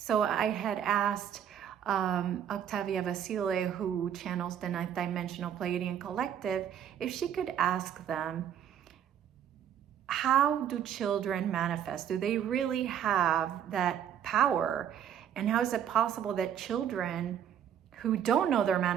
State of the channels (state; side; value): quieter; left; 9.4 dB